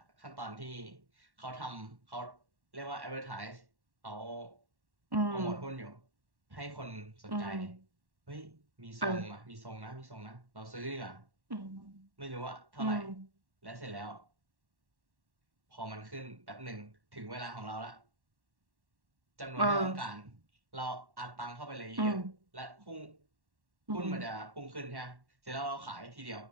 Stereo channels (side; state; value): left; late; 1.1 ms